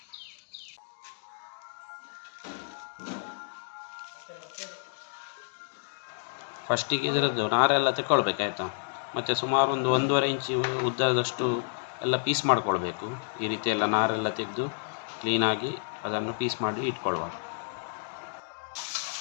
ಫಸ್ಟಿಗೆ ಇದರದ್ದು ನಾರೆಲ್ಲ ತೆಕ್ಕೊಳ್ಬೇಕಾಯ್ತಾ, ಮತ್ತು ಸುಮಾರು ಒಂದು 1.5 ಇಂಚು ಉದ್ದದಷ್ಟು ಎಲ್ಲ ಪೀಸ್ ಮಾಡ್ಕೊಳ್ಬೇಕು. ಈ ರೀತಿ ಎಲ್ಲ ನಾರೆಲ್ಲ ತೆಗೆದು ಕ್ಲೀನಾಗಿ ಅದನ್ನು ಪೀಸ್ ಮಾಡಿ ಇಟ್ಕೊಳ್ಳುವ.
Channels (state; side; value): silent; right; digital silence